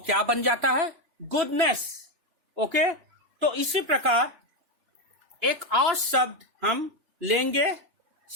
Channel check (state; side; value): late; left; 2.9 ms